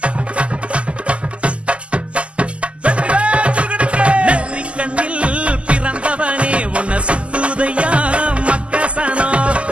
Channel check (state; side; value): late; left; 0.057 ms